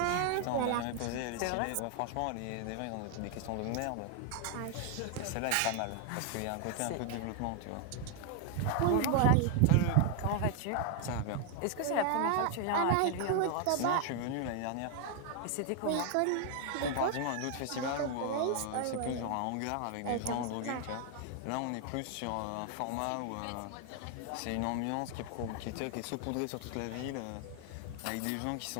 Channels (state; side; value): different; both; correlation 0.00